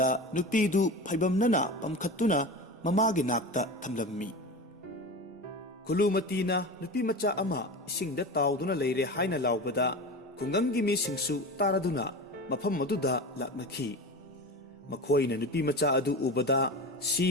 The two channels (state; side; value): normal; both; correlation 0.28